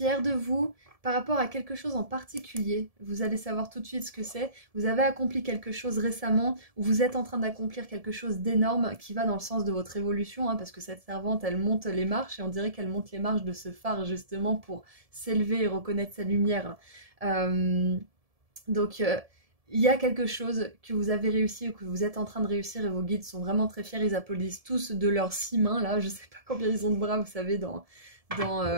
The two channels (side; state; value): left; late; 1.7 ms